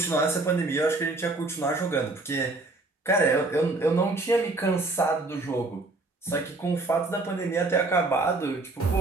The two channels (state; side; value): quieter; left; 3.1 dB